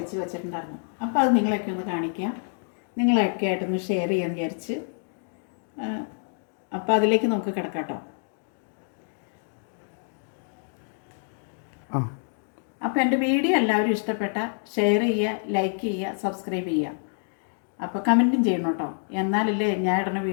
വെച്ചിട്ടുണ്ടായിരുന്നു. അപ്പോൾ അത് നിങ്ങളെയൊക്കെ ഒന്ന് കാണിക്കാം, നിങ്ങളെയൊക്കെ ആയിട്ടൊന്ന് ഷെയർ ചെയ്യാൻ വിചാരിച്ച്. അപ്പോൾ അതിലേക്ക് നമുക്ക് കിടക്കാം കേട്ടോ. അപ്പോൾ എൻ്റെ വീഡിയോ എല്ലാവരും ഇഷ്ടപ്പെട്ട ഷെയർ ചെയ്യുക, ലൈക്ക് ചെയ്യുക, സബ്സ്ക്രൈബ് ചെയ്യുക. അപ്പോൾ കമൻറ്റും ചെയ്യണം കേട്ടോ, എന്നാലല്ലേ ഞാൻ ഇടുന്ന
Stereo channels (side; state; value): right; silent; 60 dB below the other